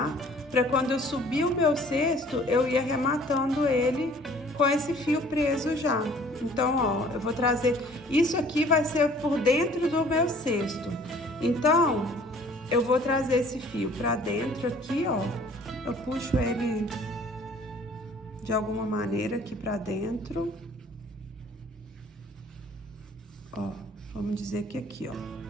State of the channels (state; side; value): normal; both; correlation 0.54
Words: pra quando eu subir o meu cesto, eu ir arrematando ele com esse fio preso já. Então, ó, eu vou trazer... Isso aqui vai ser por dentro do meu cesto. Então, eu vou trazer esse fio pra dentro aqui, ó. Eu puxo ele de alguma maneira aqui pra dentro. Ó, vamos dizer que aqui, ó.